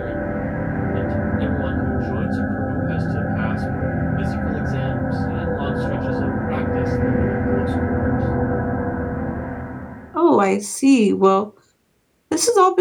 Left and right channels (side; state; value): both; identical; correlation 1.00